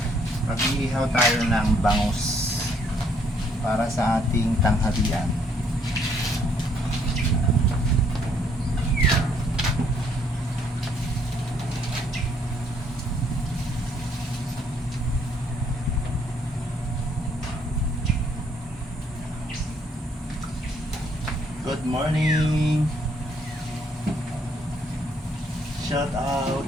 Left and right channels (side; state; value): both; normal; correlation 0.67